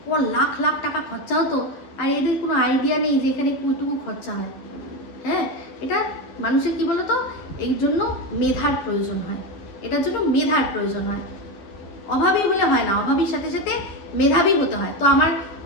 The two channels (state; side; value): late; right; 11 ms